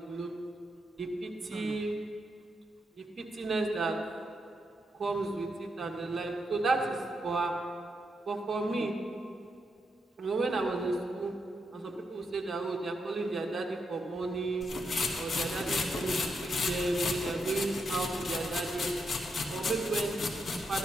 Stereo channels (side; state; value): both; normal; correlation 0.82